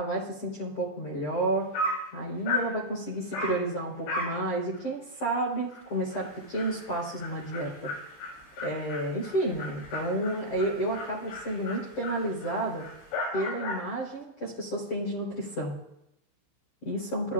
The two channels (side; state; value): right; late; 15 ms